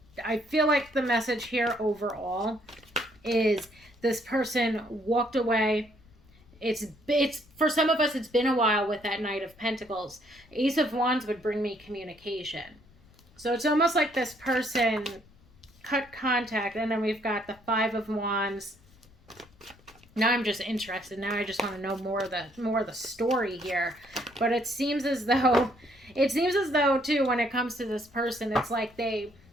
like the message here overall is this person walked away. It's for some of us, it's been a while with that Knight of Pentacles. Ace of Wands would bring me communication. So it's almost like this person cut contact, and then we've got the 5 of Wands. Now I'm just interested. Now I just want to know more of the story here. But it seems as though too, when it comes to this person, it's like they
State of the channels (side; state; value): left; noise; rumble, 27 dB below the sound